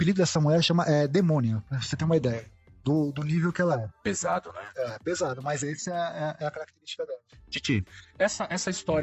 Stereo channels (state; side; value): identical; both; correlation 1.00